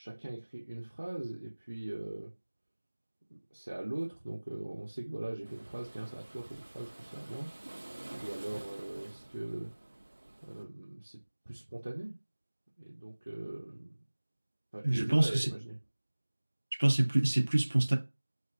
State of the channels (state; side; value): inverted; both; correlation -1.00